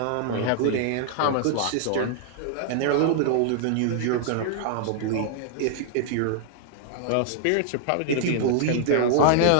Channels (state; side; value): different; both; correlation -0.01